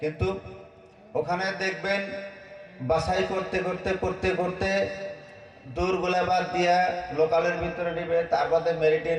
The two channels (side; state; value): both; identical; correlation 1.00